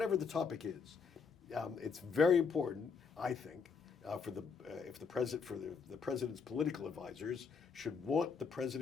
the topic is. It's very important, I think, for the president's political advisors should want the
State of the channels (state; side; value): quieter; right; 5.5 dB